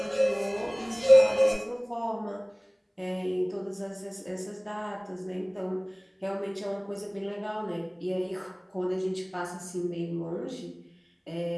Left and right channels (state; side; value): identical; both; correlation 1.00